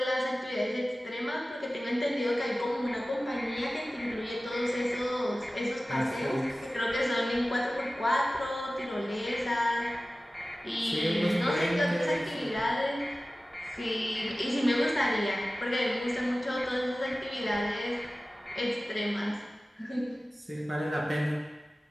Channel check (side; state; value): both; normal; correlation 0.96